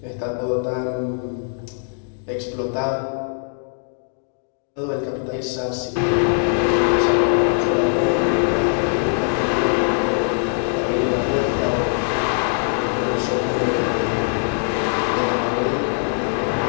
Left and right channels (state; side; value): silent; right; digital silence